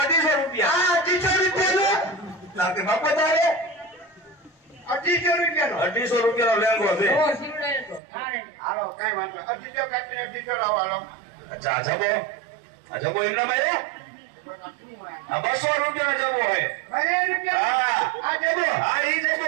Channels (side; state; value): left; drops out; at 8.0 s